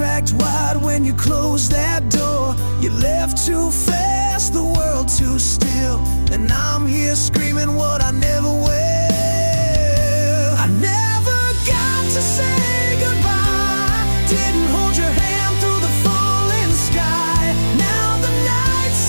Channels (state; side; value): inverted; both; correlation -1.00